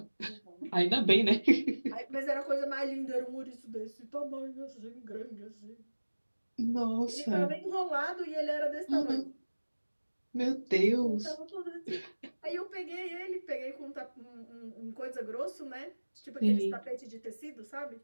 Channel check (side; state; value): both; inverted; correlation -1.00